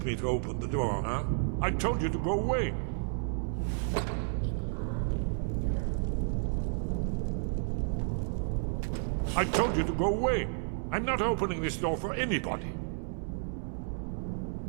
me to open the door, huh? I told you to go away. Yes. Inkpot? No. I told you to go away. I'm not opening this door for anybody.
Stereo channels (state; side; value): silent; left; 57 dB below the other